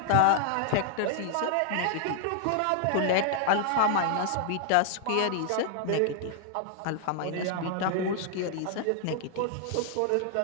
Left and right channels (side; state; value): both; different; correlation 0.00